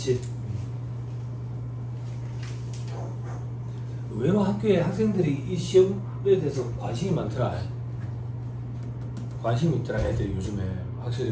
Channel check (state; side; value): identical; both; correlation 1.00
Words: 의외로 학교에 학생들이 이 시험에 대해서 관심이 많더라. 관심이 있더라. 애들이 요즘에 확실히